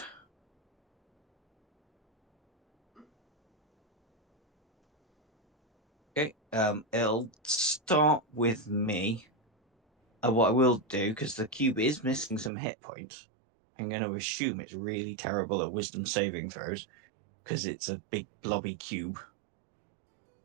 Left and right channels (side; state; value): left; drops out; at 12.5 s